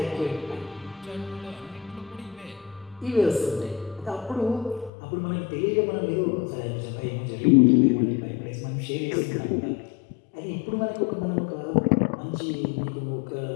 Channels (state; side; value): drops out; right; at 4.9 s